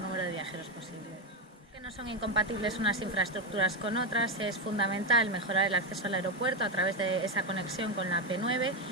de viajeros posible. No son incompatibles unas infraestructuras con otras, es fundamental mejorar el acceso al aeropuerto a través de esa conexión con la P9,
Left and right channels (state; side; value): normal; both; correlation 0.10